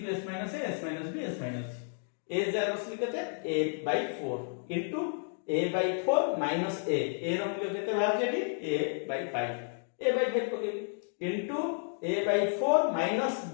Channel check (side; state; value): right; silent; 57 dB below the other